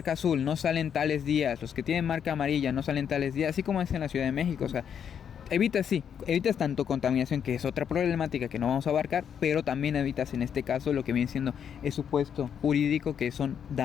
azul no salen tales días, los que tienen marca amarilla no salen tales días, así como es en la Ciudad de México, o sea, evitas tanto contaminación, que es otra problemática que no vamos a abarcar, pero también evitas en este caso lo que viene siendo el supuesto jurídico, que son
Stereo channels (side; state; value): right; quieter; 8.1 dB